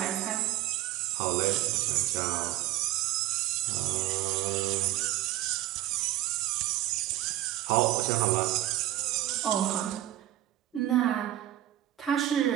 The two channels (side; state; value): left; quieter; 14.1 dB